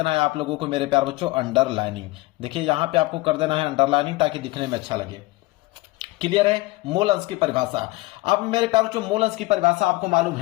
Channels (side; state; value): right; quieter; 20.9 dB